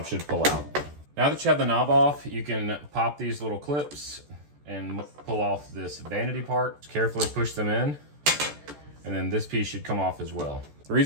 should pull out. Now that you have the knob off, you can pop these little clips and pull off this vanity part. Just carefully push them in, and then this piece should come off as well. The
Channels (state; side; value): late; left; 14 ms